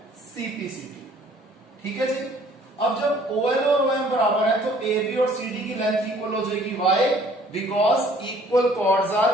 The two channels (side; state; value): both; normal; correlation 0.57